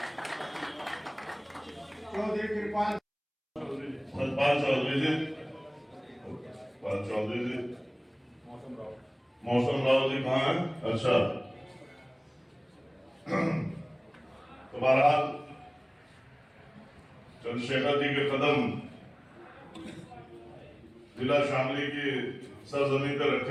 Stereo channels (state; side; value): identical; both; correlation 1.00